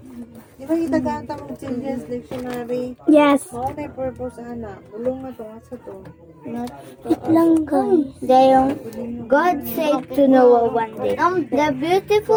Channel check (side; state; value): both; identical; correlation 1.00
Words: Di ba itaganta mong children's dictionary? Yes. Mao na yung purpose ana. Bulong na to asa to. Wait lang guys. Dayong God said to Noah one day, the